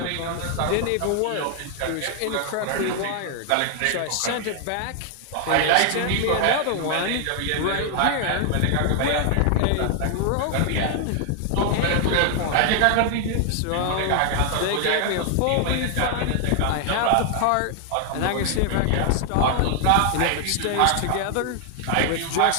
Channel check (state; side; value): different; both; correlation 0.00